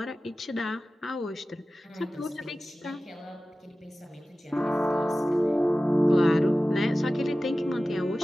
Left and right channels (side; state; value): both; normal; correlation 0.96